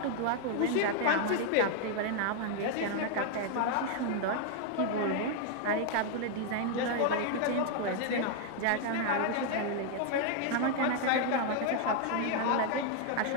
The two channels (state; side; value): different; both; correlation 0.00